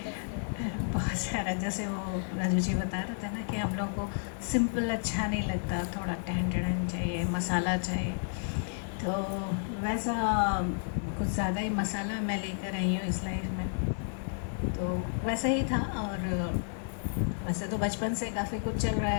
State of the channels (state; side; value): silent; right; digital silence